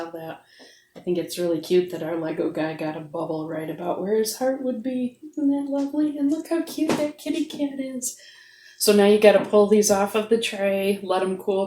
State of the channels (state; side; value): identical; both; correlation 1.00